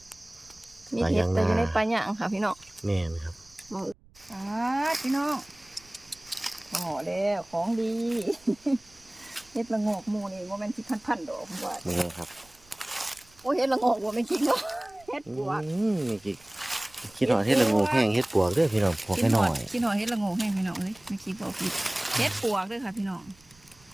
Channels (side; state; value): right; noise; rumble, 27 dB below the sound